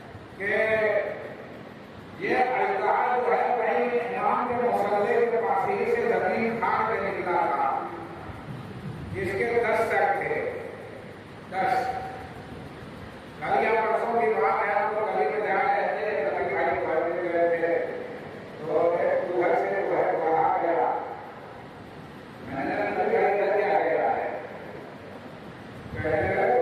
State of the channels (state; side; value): identical; both; correlation 1.00